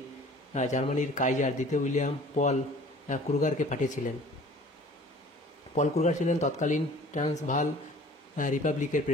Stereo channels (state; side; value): normal; both; correlation 0.49